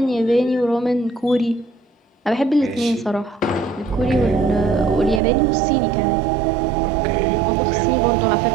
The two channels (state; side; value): drops out; left; at 5.2 s